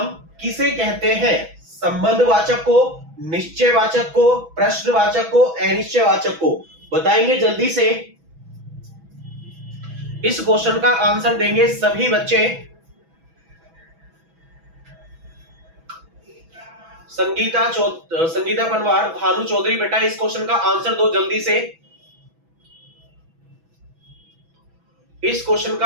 किसे कहते हैं? संबंधवाचक को, निश्चयवाचक को, प्रश्नवाचक को, अनिश्चयवाचक को। बताएंगे जल्दी से। इस क्वेश्चन का आंसर देंगे सभी बच्चे। संगीता पनवार, भानु चौधरी बेटा इस क्वेश्चन का आंसर दो जल्दी से। इस क्वेश्चन का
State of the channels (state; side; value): late; left; 6.1 ms